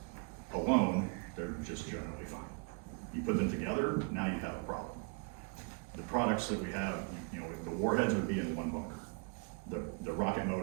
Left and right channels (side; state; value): left; quieter; 33.5 dB